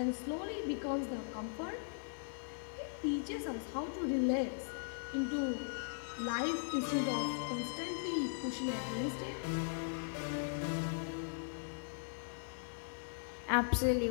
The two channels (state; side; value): silent; right; digital silence